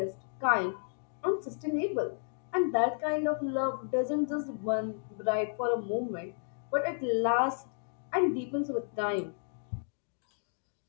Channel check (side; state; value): right; silent; digital silence